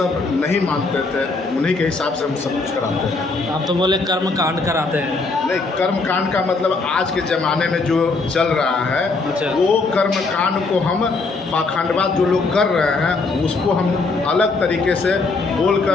नहीं मानते थे, उन्हीं के हिसाब से हम सब कुछ कराते हैं। आप तो बोले कर्म कांड कराते हैं। नहीं, कर्म कांड का मतलब आज के ज़माने में जो चल रहा है, अच्छा। वो कर्म कांड को हम पाखंडवाद जो लोग कर रहे हैं उसको हम अलग तरीके से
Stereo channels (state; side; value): quieter; right; 3.8 dB